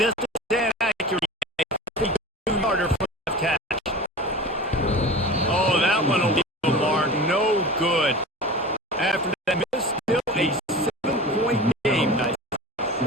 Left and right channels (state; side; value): normal; both; correlation 0.34